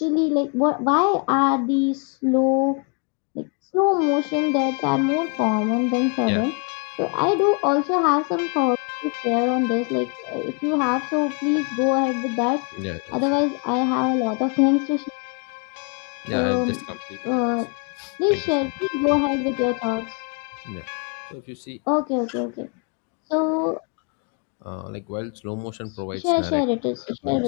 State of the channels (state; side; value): quieter; right; 36.6 dB